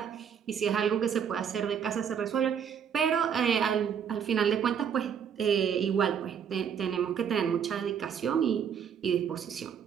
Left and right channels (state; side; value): quieter; left; 7.8 dB